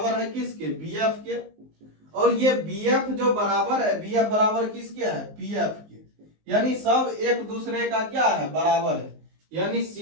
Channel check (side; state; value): left; late; 19 ms